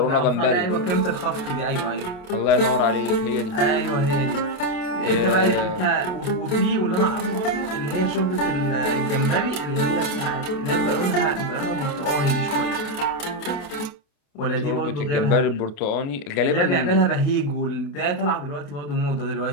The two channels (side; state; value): right; late; 28 ms